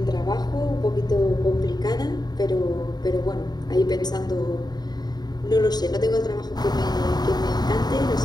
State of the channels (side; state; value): right; late; 0.20 ms